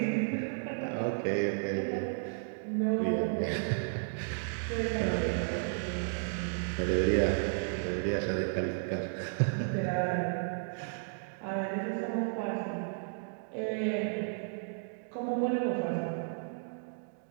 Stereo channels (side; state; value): left; silent; digital silence